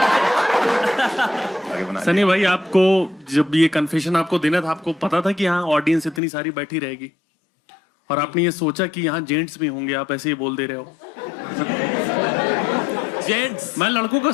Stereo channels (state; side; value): drops out; right; at 6.2 s